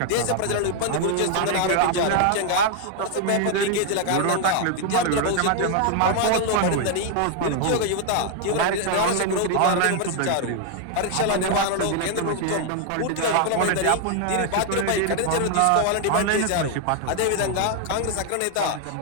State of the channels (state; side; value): different; both; correlation 0.00